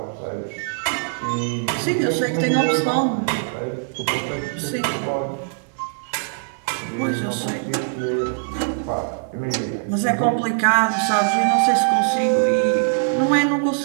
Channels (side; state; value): left; silent; digital silence